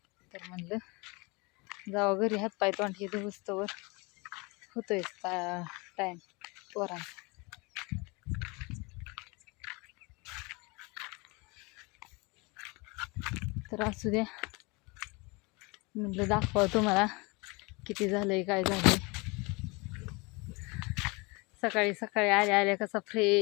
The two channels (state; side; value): quieter; right; 27.2 dB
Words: तर म्हणलं जावं घरी, हातपाय तोंड हे धुस्तवर होतोय टाईम पोरांचा. तर असू द्या म्हटलं दाखवा तुम्हाला किती झालंय काय झालंय. सकाळी सकाळी आल्या आल्या कसा